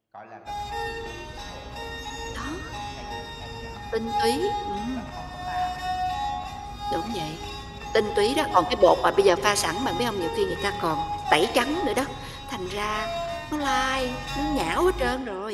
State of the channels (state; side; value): identical; both; correlation 1.00